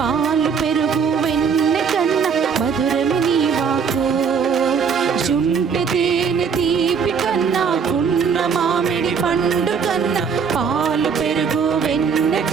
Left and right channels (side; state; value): left; quieter; 6.2 dB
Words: పెరుగు వెన్నె కన్నా మధురము నీ వాకు. జుంటె తేనె తీపి కన్నా గున్న మామిడి పండు కన్నా పాలు పెరుగు వెన్నె